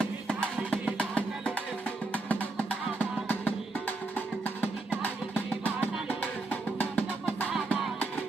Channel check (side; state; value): left; quieter; 3.4 dB